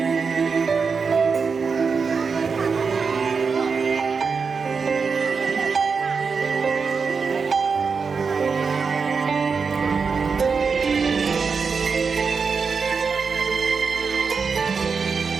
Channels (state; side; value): quieter; left; 5.3 dB